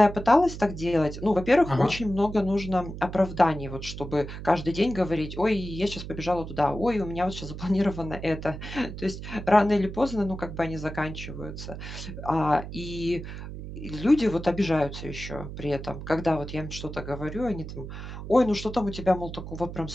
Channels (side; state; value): right; noise; hum, 9 dB below the sound